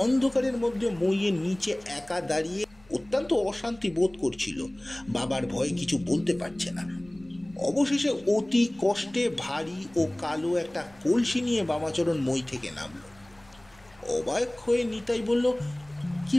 অন্ধকারের মধ্যে মইয়ের নিচে একা দাঁড়িয়ে অত্যন্ত অশান্তি বোধ করছিল। বাবার ভয়ে কিছু বলতে পারছে না। অবশেষে অতি কষ্টে ভারী ও কালো একটা কলসি নিয়ে বামাচরণ মই থেকে নামলো। অবাক হয়ে নিতাই বলল, কি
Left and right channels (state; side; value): noise; left; rumble, 27 dB below the sound